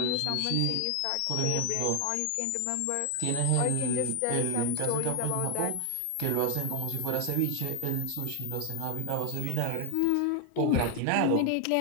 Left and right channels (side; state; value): both; different; correlation 0.00